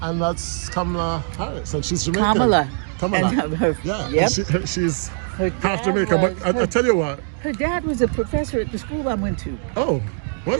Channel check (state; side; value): silent; left; 64 dB below the other